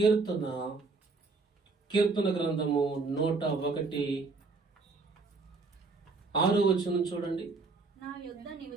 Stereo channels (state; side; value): quieter; left; 4.0 dB